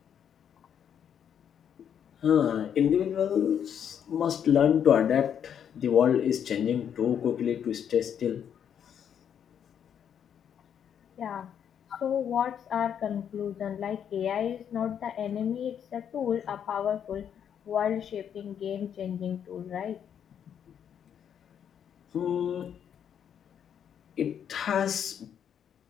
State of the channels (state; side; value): quieter; right; 8.6 dB